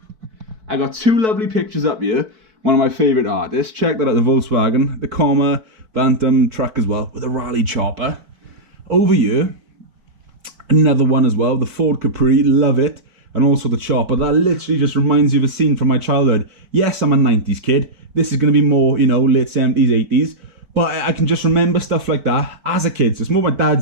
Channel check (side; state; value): left; late; 4.6 ms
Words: I got 2 lovely pictures up here. One of my favourite artists. Check that out, the Volkswagen, the Comma Bantam truck as well, with a rally chopper. Over here, another one as well, the Ford Capri, love it. And also the chopper, that literally just reminds you of a scene from my childhood. Yes, I'm a 90s kid. This is going to be more, you know, late 70s, 80s. But I can just remember stuff like that as a kid. So it's more my